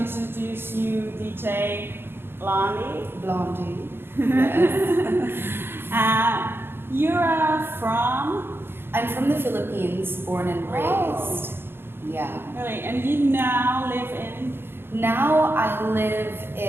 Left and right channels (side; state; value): left; late; 0.11 ms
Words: you, DJ Blondie. Blondie. Yes. You're from? I'm from the Philippines, born and raised. Oh. Yeah. Really? And you now live in? Now I live